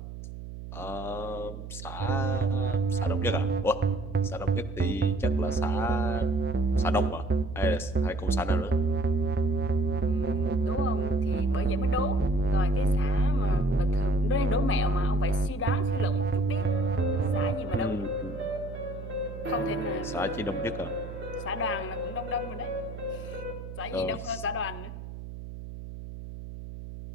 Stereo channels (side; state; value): right; noise; hum, 11 dB below the sound